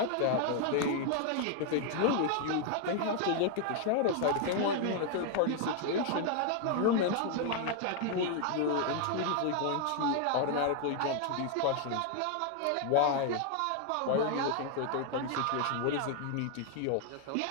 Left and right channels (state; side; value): different; both; correlation 0.00